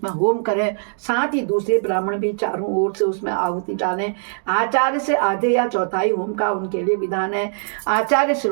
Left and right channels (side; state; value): left; silent; digital silence